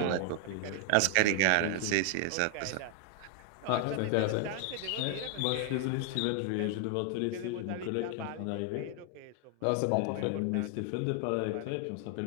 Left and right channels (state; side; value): different; both; correlation 0.00